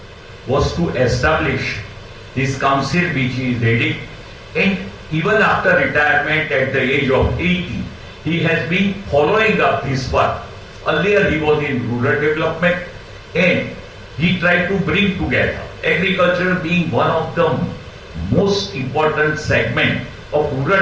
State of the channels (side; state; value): both; identical; correlation 1.00